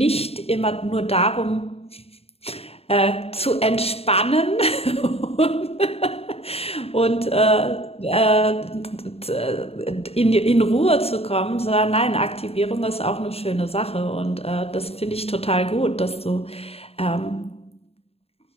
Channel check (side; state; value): right; late; 0.29 ms